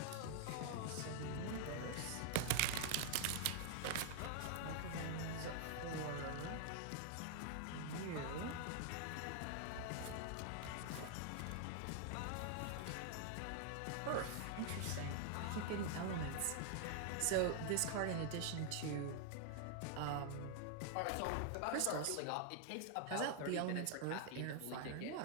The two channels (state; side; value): different; both; correlation 0.00